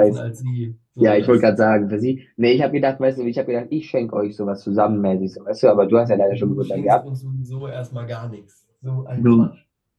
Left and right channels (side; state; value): both; identical; correlation 1.00